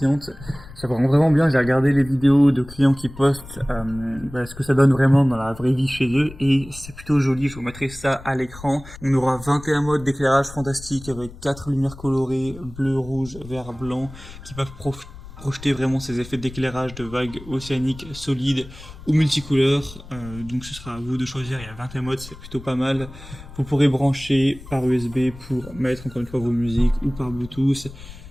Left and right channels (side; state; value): left; noise; rumble, 16 dB below the sound